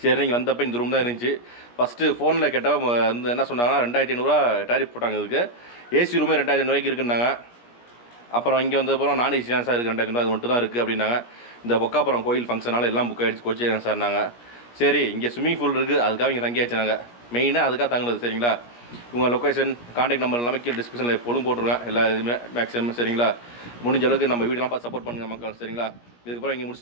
நீங்கள் வந்தப்போ இந்த ரூம் தான் இருந்துச்சு. ஃபஸ்ட்டு ஃபோனில் கேட்டப்போ வந்து என்ன சொன்னாங்கன்னா 2500 டேரிஃப் போட்டாங்க. இதுக்கு ஏசி ரூமே 2500 இருக்குன்னாங்க. அப்புறம் இங்கே வந்தப்புறம் நான் ஏசி தான் சார் இருக்குது 2500 அது மட்டும் தான் இருக்குது அப்படின்னாங்க. இந்த பொக்காப்புறம் கோயில் ஃபங்க்ஷனால் எல்லாம் புக் ஆகிடுச்சு, கோச்சி சார்னாங்க. சரி இங்கே ஸ்விம்மிங் பூல் இருக்குது, அதுக்காக இங்கே தங்கியாச்சு நாங்கள். மெயினாக அதுக்காக தங்குனது, சரிங்களா. உங்கள் லொக்கேஷன் கான்டாக்ட் நம்பர் எல்லாமே கீழே டிஸ்கிரிப்ஷனில் எப்போதும் போட்டுருவேன் எல்லா இதுவுமே மேக்ஸிமம், சரிங்களா. முடிஞ்ச அளவுக்கு நம்ம வீடெல்லாம் பார்த்து சப்போர்ட் பண்ணுங்கள் மக்கள், சரிங்களா. இதுக்கப்புறம் இங்கே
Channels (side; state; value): right; late; 17 ms